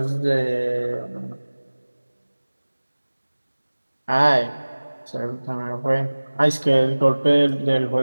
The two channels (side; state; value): both; inverted; correlation -1.00